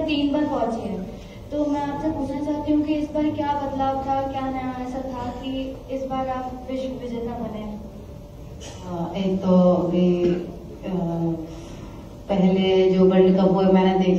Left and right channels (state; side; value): identical; both; correlation 1.00